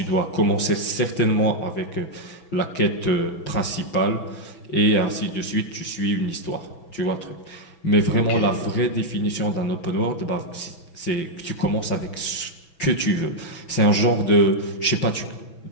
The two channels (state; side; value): late; right; 6.1 ms